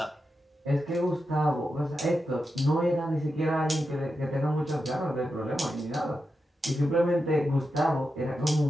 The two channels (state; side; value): normal; both; correlation 0.88